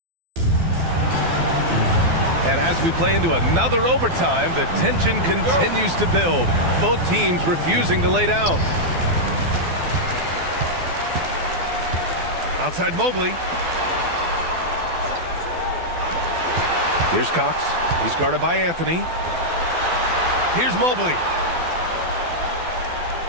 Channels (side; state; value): left; late; 12 ms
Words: And as we play into another overtime, the tension continues to build. Both teams refusing to lay down. Outside Mobley. Here's Cox. He's guarded by Anthony. Here's Mobley.